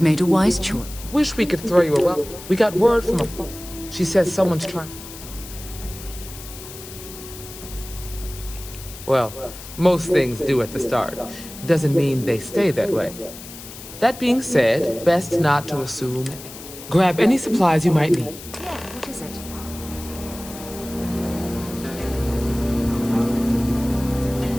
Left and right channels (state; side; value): noise; left; hiss, 14 dB below the sound